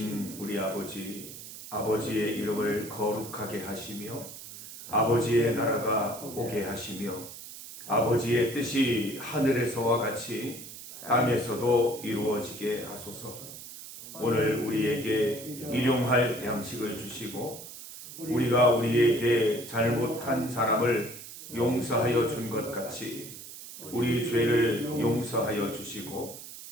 우리 아버지, 아버지의 이름을 거룩하게 하시며 아버지의 나라가 오게 하시며 아버지의 뜻이 하늘에서와 같이 땅에서도 이루어지게 하소서. 오늘 우리에게 일용할 양식을 주시고 우리가 우리에게 잘못한 사람을 용서하여 준 것 같이 우리 죄를 용서하여 주시고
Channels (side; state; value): right; noise; hiss, 13 dB below the sound